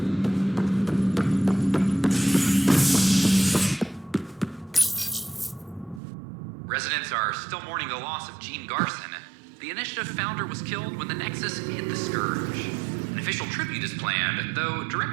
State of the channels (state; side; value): drops out; left; at 6.0 s